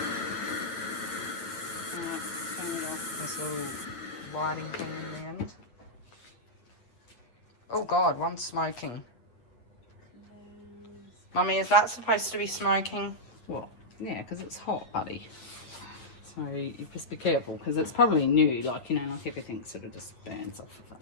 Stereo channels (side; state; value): right; late; 8.8 ms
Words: This little lighting thing in the end. Oh God, one's smoking. Mummy, is that supposed to be smoking? Well, yeah, because it's hot, buddy. So you just be careful, because it's probably new, like everything sort of just burns off of it.